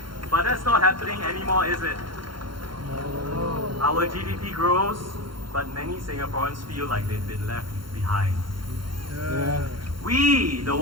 But that's not happening anymore, is it? Our GDP grows, but many Singaporeans feel like they've been left behind. We, the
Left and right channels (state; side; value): late; left; 0.73 ms